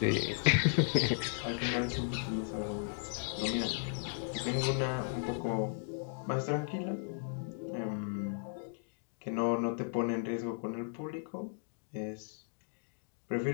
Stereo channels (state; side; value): silent; right; digital silence